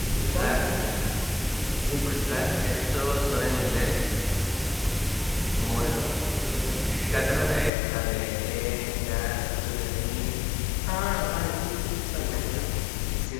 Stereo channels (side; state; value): right; drops out; at 7.7 s